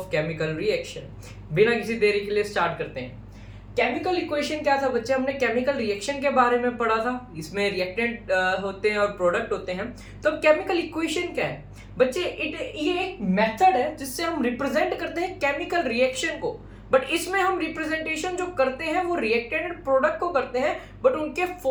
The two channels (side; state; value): both; identical; correlation 1.00